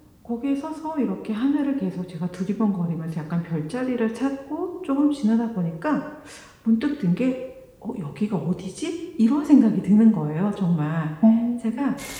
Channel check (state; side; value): identical; both; correlation 1.00